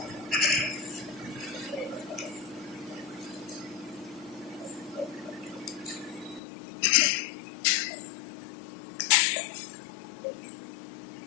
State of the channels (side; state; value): right; drops out; at 6.4 s